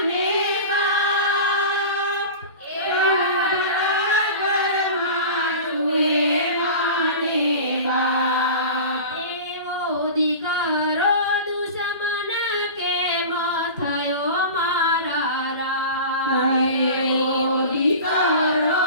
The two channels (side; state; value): both; inverted; correlation -0.34